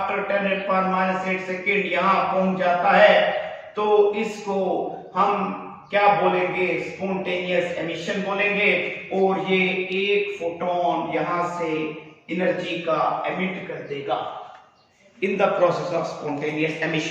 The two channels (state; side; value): identical; both; correlation 1.00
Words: 10⁻⁸ सेकेंड यहां पहुंच जाता है, तो इसको हम क्या बोलेंगे? स्पॉन्टेनियस एमिशन बोलेंगे। और ये एक फोटोन यहां से एनर्जी का एमिट कर देगा in the process of spontaneous